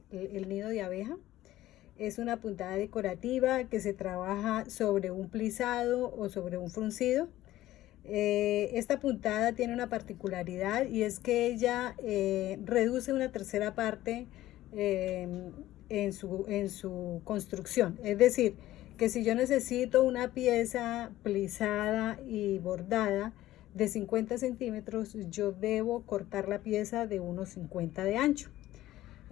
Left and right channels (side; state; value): right; quieter; 15.1 dB